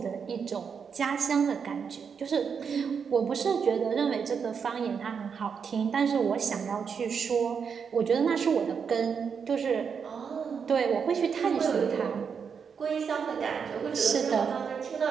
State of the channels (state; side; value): quieter; left; 6.5 dB